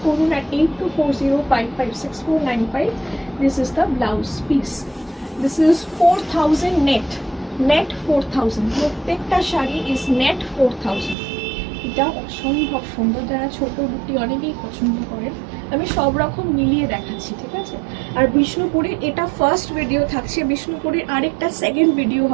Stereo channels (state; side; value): drops out; left; at 11.2 s